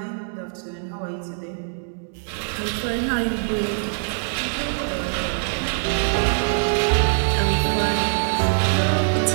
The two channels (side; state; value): left; silent; digital silence